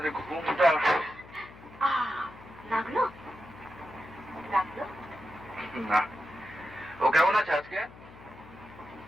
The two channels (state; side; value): noise; left; hum, 19 dB below the sound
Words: ঘুমটা লাগলো? না। ও কেমন আছে আজকে?